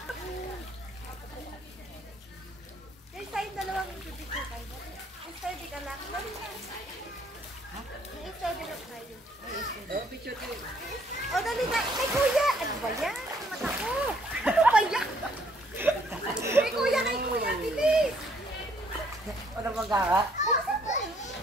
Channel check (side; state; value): both; normal; correlation 0.65